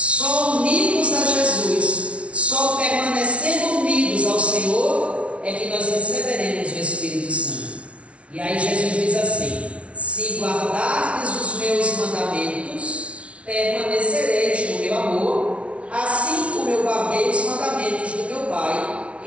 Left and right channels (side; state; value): left; late; 0.062 ms